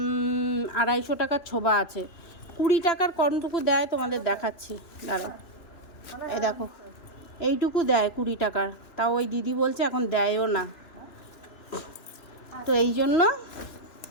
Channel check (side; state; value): right; late; 2.9 ms